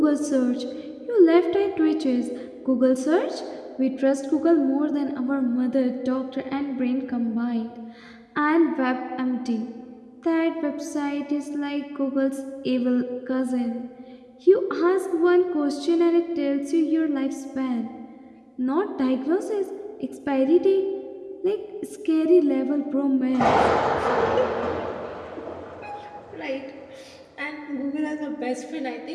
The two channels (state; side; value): identical; both; correlation 1.00